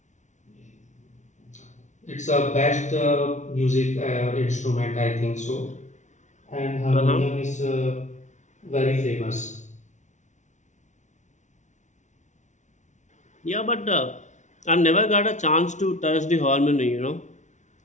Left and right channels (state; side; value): late; right; 0.35 ms